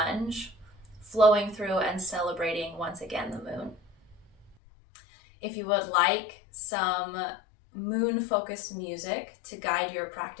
flowing through and celebrating once again the moon. If you would like some moon-focused music to guide your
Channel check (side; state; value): right; drops out; at 4.5 s